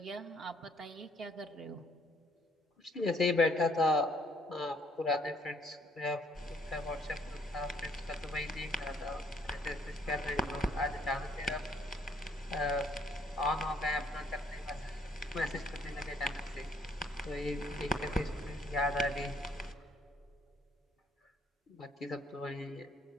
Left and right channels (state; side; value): normal; both; correlation 0.65